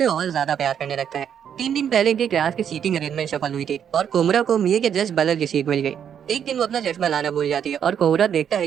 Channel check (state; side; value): quieter; left; 8.6 dB